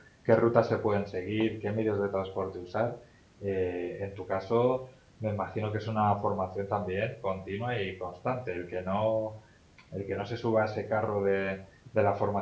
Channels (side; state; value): both; identical; correlation 1.00